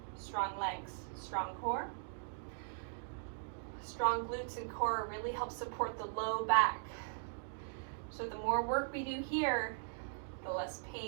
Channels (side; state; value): left; silent; digital silence